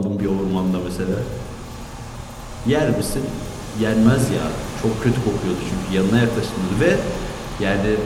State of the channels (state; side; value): identical; both; correlation 1.00